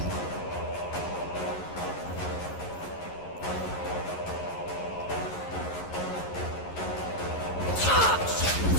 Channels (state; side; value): late; right; 11 ms